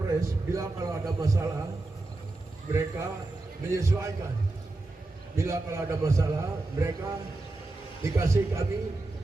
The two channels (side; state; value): left; quieter; 3.0 dB